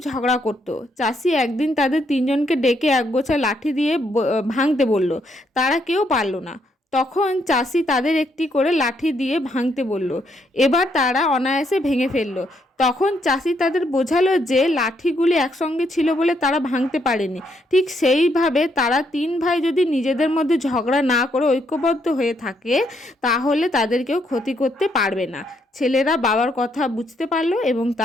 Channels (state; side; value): normal; both; correlation 0.74